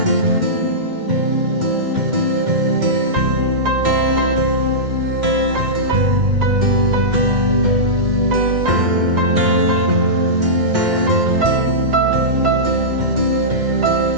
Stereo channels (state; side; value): late; left; 2.1 ms